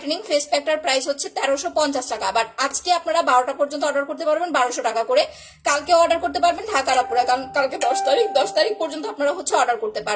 ফেস প্যাকটার প্রাইস হচ্ছে 1350 টাকা, বাট আজকে আপনারা 12টা পর্যন্ত অর্ডার করতে পারবেন 1200 টাকা করে। কালকে অর্ডার করতে পারবেন ঢাকার আপুরা, কারণ কালকে 10 তারিখ পর্যন্ত আপনারা হচ্ছে অর্ডার করতে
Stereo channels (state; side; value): identical; both; correlation 1.00